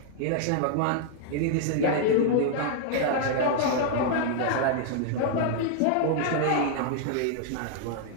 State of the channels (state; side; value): different; both; correlation -0.01